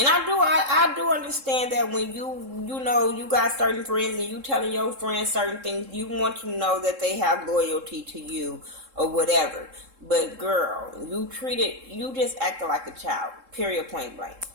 I do understand that when you know you got certain friends and you telling your friends certain things, you want to know that they have loyalty to you or whatever. But girl, you just acted like a child. Period, point blank.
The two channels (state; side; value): late; left; 3.7 ms